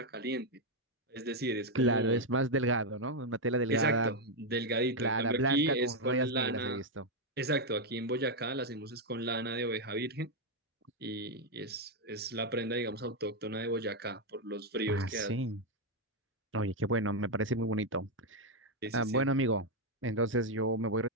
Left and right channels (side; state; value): both; normal; correlation 0.02